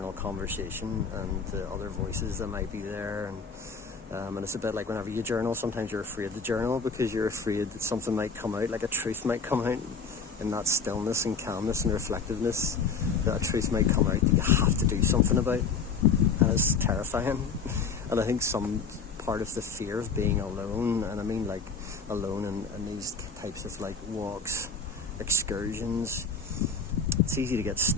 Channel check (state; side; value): quieter; right; 5.0 dB